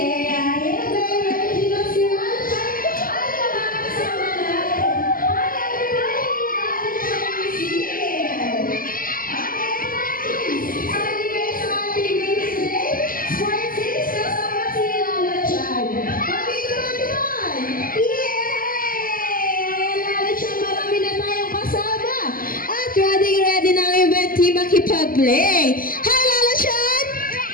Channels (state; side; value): late; right; 0.41 ms